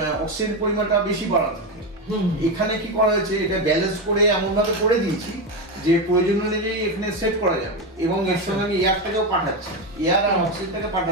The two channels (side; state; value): both; normal; correlation 0.13